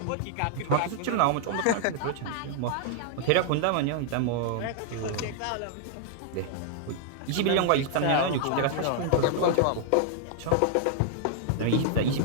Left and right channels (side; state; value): both; different; correlation -0.01